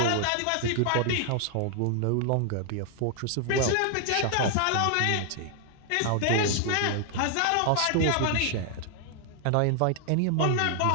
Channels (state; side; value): different; both; correlation 0.00